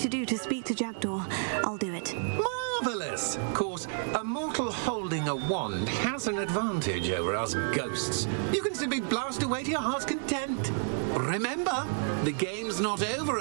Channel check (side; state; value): left; silent; digital silence